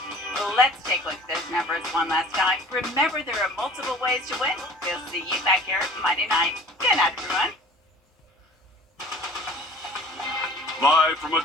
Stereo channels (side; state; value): both; normal; correlation 0.47